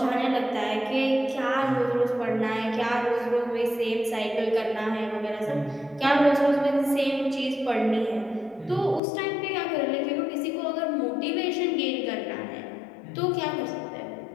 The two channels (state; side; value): drops out; right; at 9.0 s